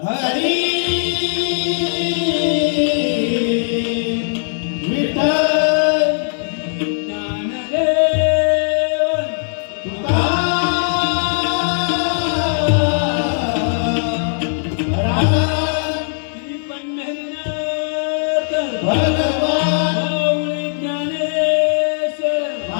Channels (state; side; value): silent; right; digital silence